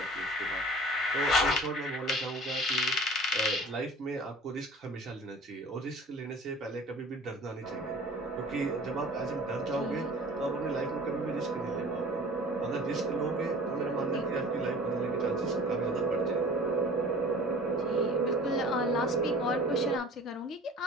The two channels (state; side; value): normal; both; correlation 0.44